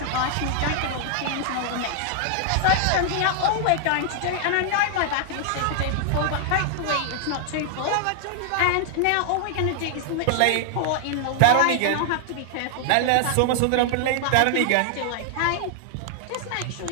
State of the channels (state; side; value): different; both; correlation 0.00